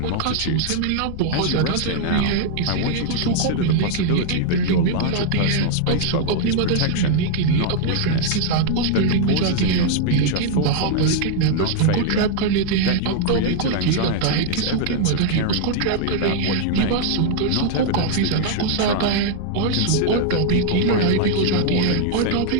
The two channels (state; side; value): different; both; correlation 0.00